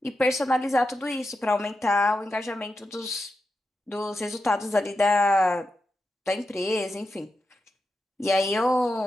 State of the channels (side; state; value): both; normal; correlation 0.88